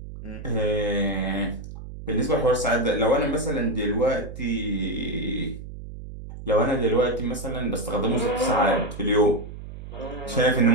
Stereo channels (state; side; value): noise; right; hum, 12 dB below the sound